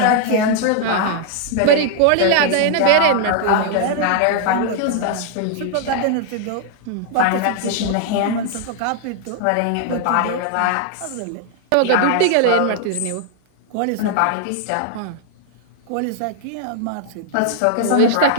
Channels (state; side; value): different; both; correlation 0.00